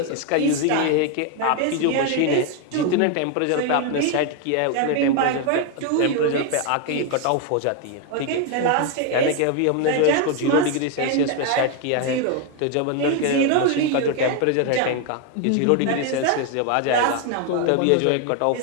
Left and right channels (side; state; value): both; different; correlation 0.01